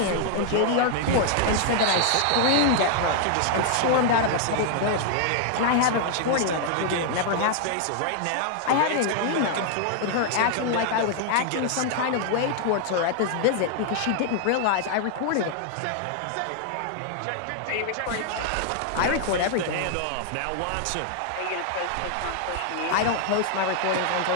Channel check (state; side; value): different; both; correlation 0.00